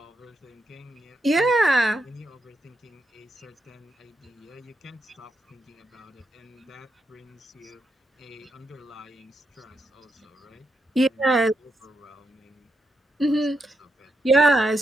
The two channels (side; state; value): both; normal; correlation 0.83